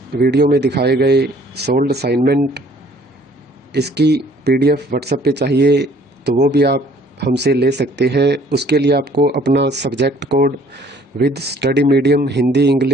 वीडियो में दिखाए गए सोल्ड असाइनमेंट इसकी PDF व्हाट्सएप पे चाहिए, तो वो भी आप हमसे ले सकते हैं। उसके लिए आपको अपना subject code with study medium, Hindi,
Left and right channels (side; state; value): both; normal; correlation 0.57